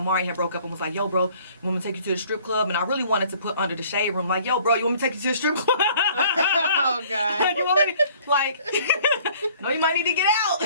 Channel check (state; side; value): inverted; both; correlation -0.55